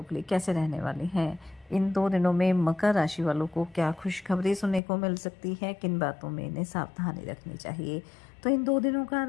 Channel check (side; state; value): right; drops out; at 4.8 s